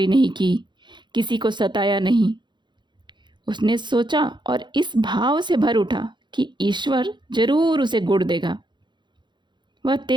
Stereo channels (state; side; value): late; left; 0.22 ms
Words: नहीं की, किसी को सताया नहीं। उसने सोचा और इस भाव से भर उठा कि ईश्वर जरूर उसे गुड़ देगा। वह